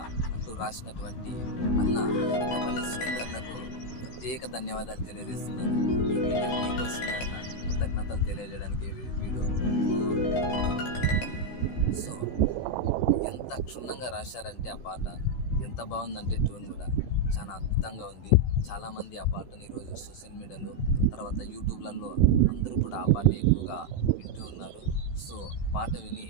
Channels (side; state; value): right; late; 16 ms